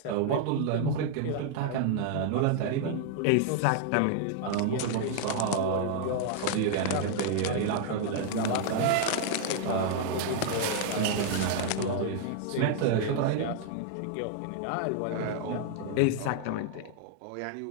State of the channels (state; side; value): different; both; correlation 0.00